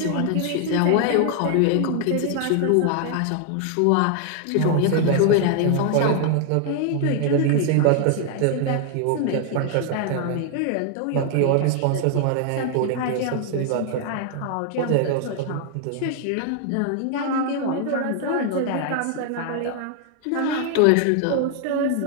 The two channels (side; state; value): both; different; correlation 0.00